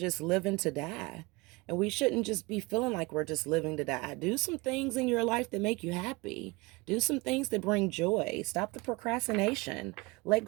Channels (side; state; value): left; quieter; 24.1 dB